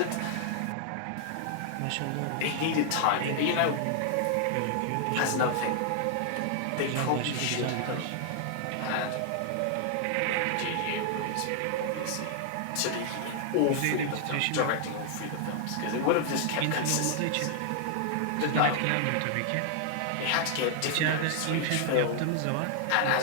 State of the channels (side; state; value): both; different; correlation 0.00